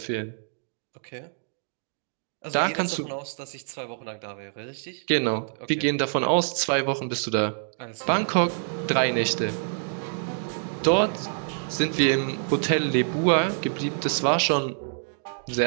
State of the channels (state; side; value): silent; left; digital silence